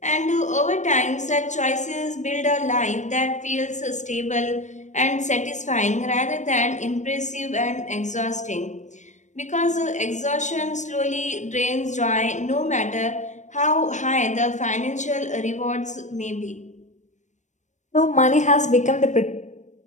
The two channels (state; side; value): late; right; 0.35 ms